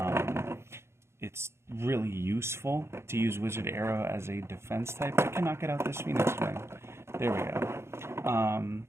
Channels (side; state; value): left; late; 0.13 ms